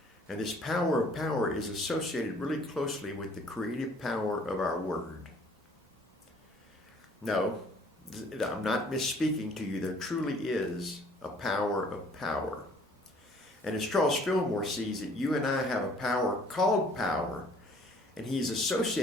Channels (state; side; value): normal; both; correlation 0.57